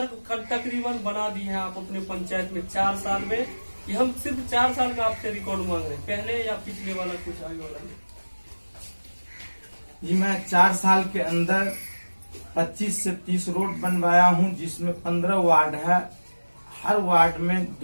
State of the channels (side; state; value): both; inverted; correlation -1.00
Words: तकरीबन बना दिए हैं आप अपने पंचायत में 4 साल में। ये हम सिर्फ 4 साल का आपसे रिकॉर्ड मांग रहे हैं, पहले या पिछले वाला कुछ आगे वाला नहीं। जी मैं 4 साल के अंदर 25 से 30 रोड बनवाया हूँ, जिसमें 15 वार्ड है। हर वार्ड में